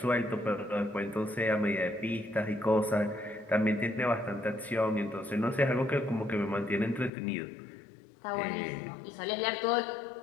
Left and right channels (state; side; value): drops out; right; at 7.1 s